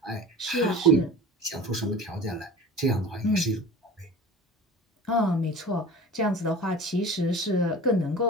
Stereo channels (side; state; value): both; normal; correlation 0.38